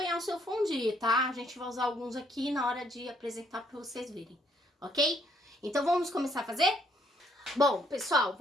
o seu fondue, tá? A gente vai usar alguns aqui na hora de apresentar para vocês verem, ok? Então vamos começar a fazer? Bom, pessoal,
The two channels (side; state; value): both; normal; correlation 0.68